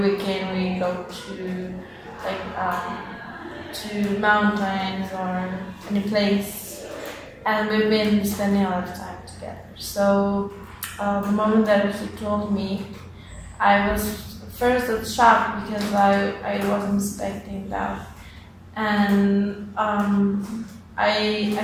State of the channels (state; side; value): identical; both; correlation 1.00